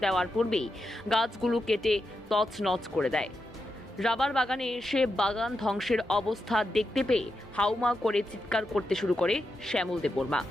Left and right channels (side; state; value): both; normal; correlation 0.86